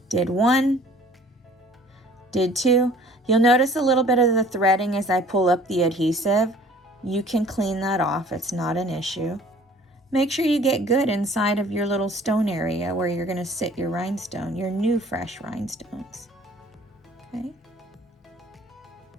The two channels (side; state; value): both; normal; correlation 0.52